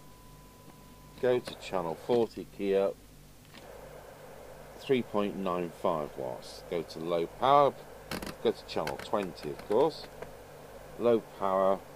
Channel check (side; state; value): both; identical; correlation 1.00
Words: go to channel 40, key up, 3.95 watts, go to low power, go to channel 20 of course, low power.